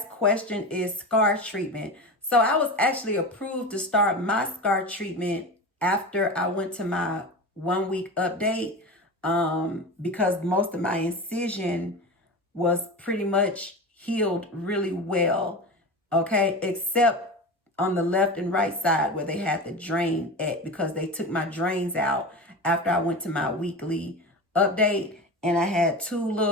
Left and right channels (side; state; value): both; normal; correlation 0.27